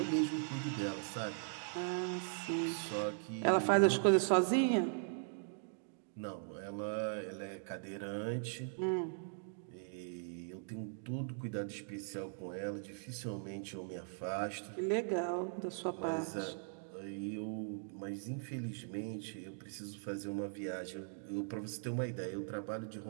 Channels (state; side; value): silent; left; digital silence